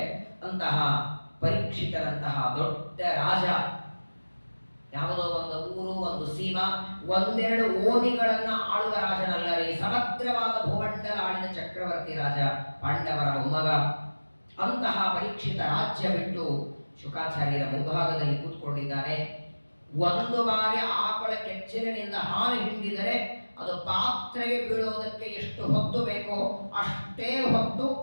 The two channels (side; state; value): both; inverted; correlation -1.00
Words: ಅಂತಹ ಪರೀಕ್ಷಿತರಂತಹ ದೊಡ್ಡ ರಾಜ, ಯಾವುದೋ ಒಂದು ಊರು, ಒಂದು ಸೀಮಾ, ಒಂದೆರಡು ಓಣಿಗಳನ್ನ ಆಳುವ ರಾಜನಲ್ಲ ರೀ. ಸಮಗ್ರವಾದ ಭೂಮಂಡಲ ಆಳಿದ ಚಕ್ರವರ್ತಿ ರಾಜ, ಪಾಂಡವರ ಮೊಮ್ಮಗ. ಅಂತಹ ಪರೀಕ್ಷಿತ ರಾಜ್ಯ ಬಿಟ್ಟು ಶುಕಾಚಾರ್ಯರ ಮುಂಭಾಗದಲ್ಲಿ ಕೂತ್ಕೊಂಡಿದ್ದಾನೆ. ಒಂದು ಬಾರಿ ಆಕಳ ಕೆಚ್ಚಲಿನಿಂದ ಹಾಲು ಹಿಂಡಿದರೆ ಅದು ಪಾತ್ರೆಗೆ ಬೀಳೋದಕ್ಕೆ ಎಷ್ಟು ಹೊತ್ತು ಬೇಕೋ ಅಷ್ಟೇ ಹೊತ್ತು